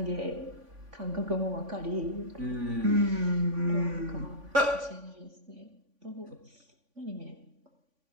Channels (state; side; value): late; left; 3.5 ms